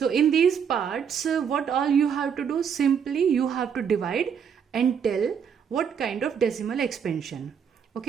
in these parts, what all you have to do, simply you have to divide and tell what kind of decimal expansion.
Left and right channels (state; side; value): quieter; left; 7.3 dB